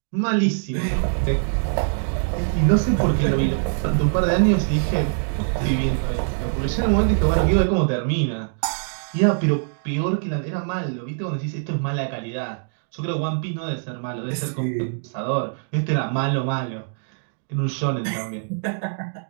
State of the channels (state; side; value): silent; left; digital silence